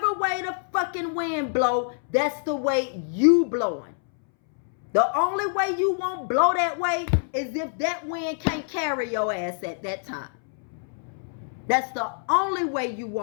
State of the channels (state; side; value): silent; right; 61 dB below the other